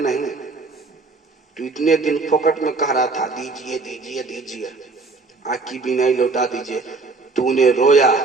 नहीं। तू इतने दिन फोकट में कह रहा था दीजिए दीजिए दीजिए, आँख की बीनाई लौटा दीजिए। तूने रोया,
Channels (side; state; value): left; quieter; 3.9 dB